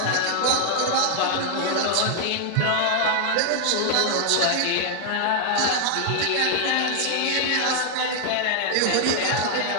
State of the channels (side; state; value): both; different; correlation 0.00